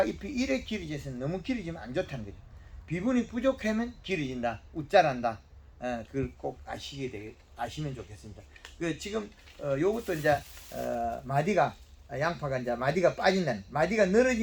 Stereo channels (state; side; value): identical; both; correlation 1.00